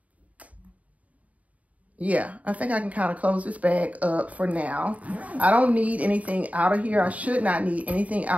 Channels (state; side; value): late; left; 0.069 ms